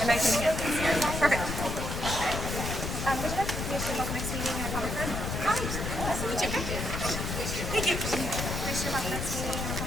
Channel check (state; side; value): noise; left; rumble, 3 dB below the sound